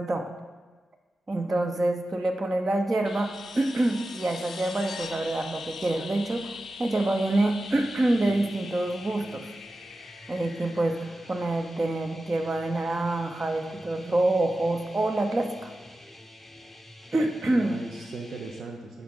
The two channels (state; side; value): normal; both; correlation 0.93